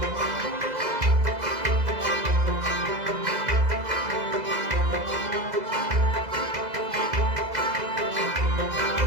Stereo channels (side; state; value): left; late; 2.0 ms